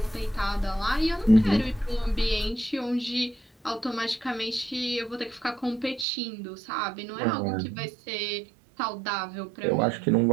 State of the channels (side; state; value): left; drops out; at 6.1 s